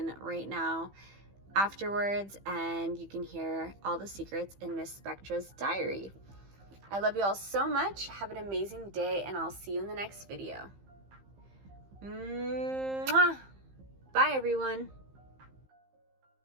right now afterwards, and you can hear all the secrets in Miss Spectra's diary. I love you all so much. Have an amazing day, and I'll see you in the next video. Mwah! Bye, everyone.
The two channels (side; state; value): left; late; 15 ms